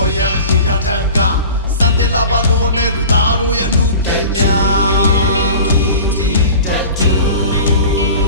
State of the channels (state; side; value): inverted; both; correlation -0.38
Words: ်ရအရှိရထက်ကစံတင်လာပါလို့နဲ့လူသားတို့ရဲ့အမှုပညာ